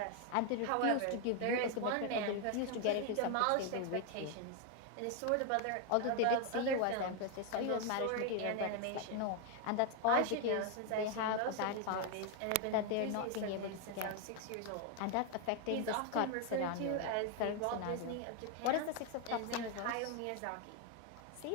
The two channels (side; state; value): both; different; correlation 0.01